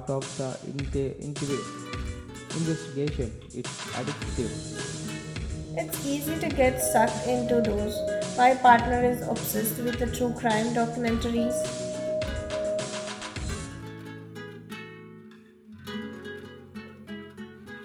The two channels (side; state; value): both; identical; correlation 1.00